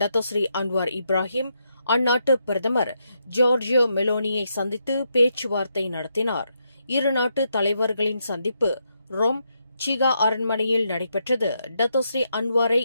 டத்தோஸ்ரீ அன்வார் இப்ராஹிம் அந்நாட்டு பிரதமர் ஜார்ஜியோ மெலோனியை சந்தித்து பேச்சுவார்த்தை நடத்தினார். இரு நாட்டு தலைவர்களின் சந்திப்பு ரோம் சீகா அரண்மனையில் நடைபெற்றது. டத்தோஸ்ரீ அன்வாரை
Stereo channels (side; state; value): both; inverted; correlation -0.80